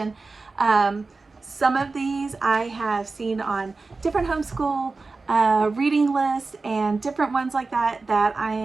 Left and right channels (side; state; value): left; quieter; 3.9 dB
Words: Some of these I have seen on different homeschool reading lists and different ones like that